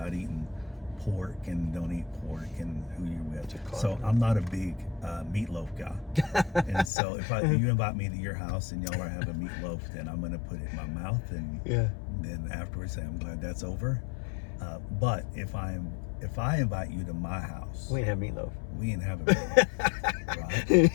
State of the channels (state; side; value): drops out; right; at 6.9 s